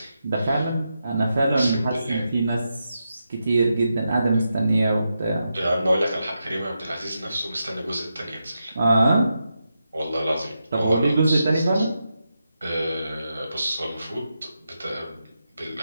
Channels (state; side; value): inverted; both; correlation -0.87